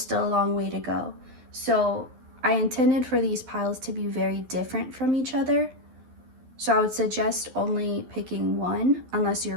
a long way to go. So I intended for these piles to be very different from each other. So I would suggest only picking one unless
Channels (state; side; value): late; left; 12 ms